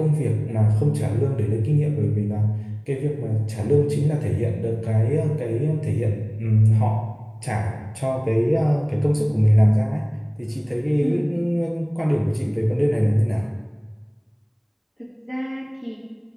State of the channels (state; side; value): identical; both; correlation 1.00